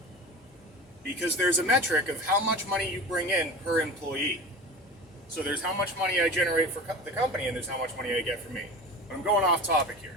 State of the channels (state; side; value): normal; both; correlation 0.33